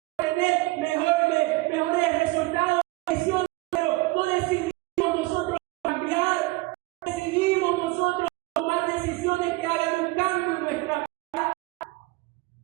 tener mejores resultados, pero no decidimos nosotros cambiar, decidimos nosotros tomar decisiones que hagan un cambio en nuestra vida.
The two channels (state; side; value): quieter; left; 22.0 dB